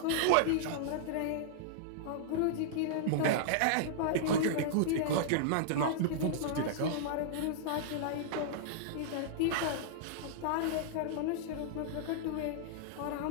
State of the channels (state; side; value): different; both; correlation -0.02